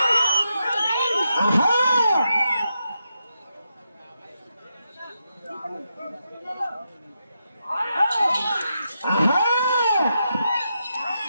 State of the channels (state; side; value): inverted; both; correlation -0.85